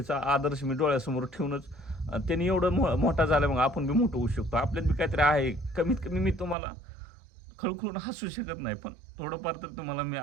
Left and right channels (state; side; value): drops out; left; at 6.6 s